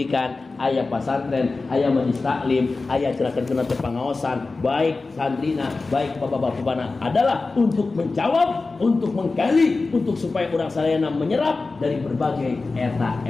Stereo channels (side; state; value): right; quieter; 3.7 dB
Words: aya pesantren, aya majelis taklim, aya cenah-cenah pengawasan, baik santrina, baik bapak-bapakna adalah untuk menjawab, untuk menggali, untuk supaya urang sadayana menyerap dari berbagai eta